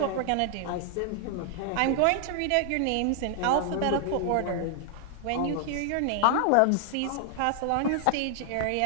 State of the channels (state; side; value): different; both; correlation 0.00